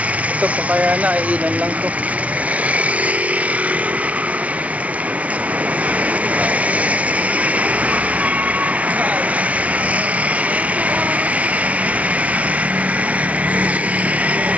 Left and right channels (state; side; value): late; left; 0.066 ms